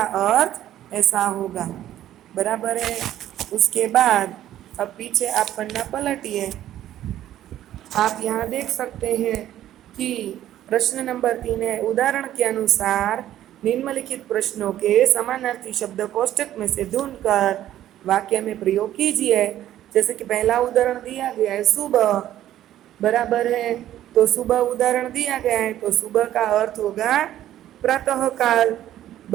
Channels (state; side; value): quieter; left; 12.5 dB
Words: अर्थ ऐसा होगा। बराबर है। उसके बाद अब पीछे आप पन्ना पलटिए। आप यहाँ देख सकते हैं कि प्रश्न नंबर 3 है, उदाहरण के अनुसार निम्नलिखित प्रश्नों के समानार्थी शब्द कोष्ठक में से ढूंढकर वाक्य में प्रयोग कीजिए। जैसे कि पहला उदाहरण दिया गया है सुबह, बराबर है। तो सुबह उदाहरण दिया गया है, तो सुबह का अर्थ होगा प्रातः काल,